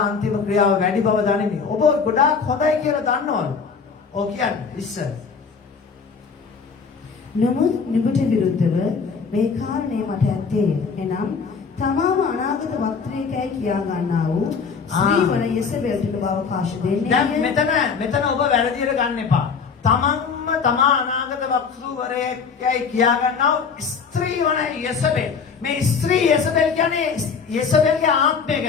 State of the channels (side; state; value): right; quieter; 5.6 dB